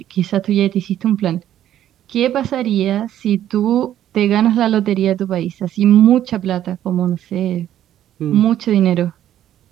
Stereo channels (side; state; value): left; quieter; 11.6 dB